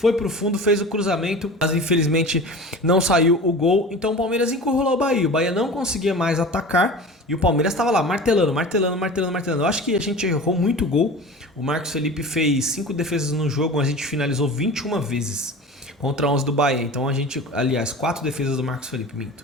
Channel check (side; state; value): both; normal; correlation 0.35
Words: pro fundo, fez o cruzamento, mas infelizmente não saiu o gol. Então o Palmeiras encurralou o Bahia. O Bahia não conseguia mais atacar e o Palmeiras estava lá martelando. Eu acho que a gente errou muito gol. O Marcos Felipe fez 5 defesas no jogo, a gente finalizou 21 vezes contra 11 do Bahia. Então a gente, aliás, 4 defesas do Marcos Felipe,